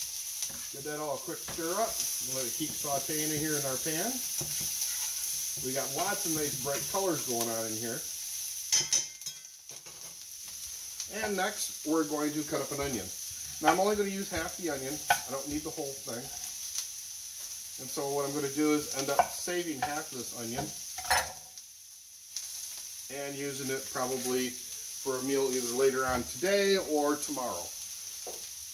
get that all a quick stir up. Let it keep sauteing in here in our pan. We got lots of nice bright colors going on in here. And next, we're going to cut up an onion. Now, I'm only going to use half the onion. I don't need the whole thing. And so what I'm going to do is end up saving half of this onion and using it probably for a meal either later on today or tomorrow.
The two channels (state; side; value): identical; both; correlation 1.00